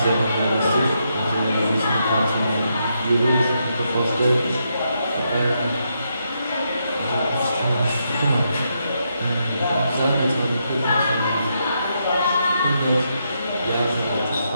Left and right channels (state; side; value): inverted; both; correlation -0.81